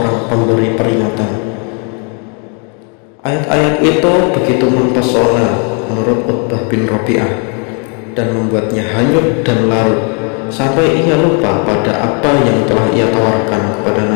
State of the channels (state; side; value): quieter; right; 38.3 dB